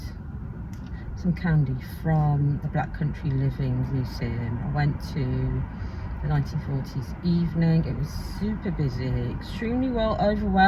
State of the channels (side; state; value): both; identical; correlation 1.00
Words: some candy from the Black Country Living Museum. I went to the 1940s evening. It was super busy, extremely